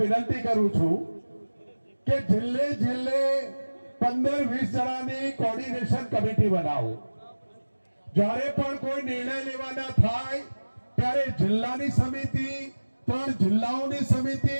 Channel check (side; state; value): both; inverted; correlation -1.00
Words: વિનંતી કરું છું કે જિલ્લે 15-20 જણાની કોર્ડિનેશન કમિટી બનાવો. જ્યારે પણ કોઈ નિર્ણય લેવાના થાય ત્યારે જિલ્લાની સમિતિ, 3 જિલ્લાઓની સમિતિ,